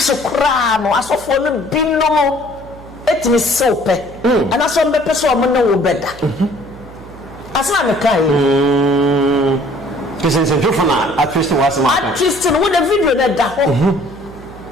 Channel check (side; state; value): right; noise; hum, 19 dB below the sound